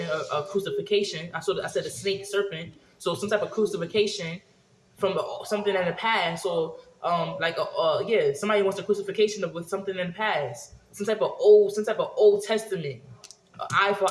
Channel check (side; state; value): both; identical; correlation 1.00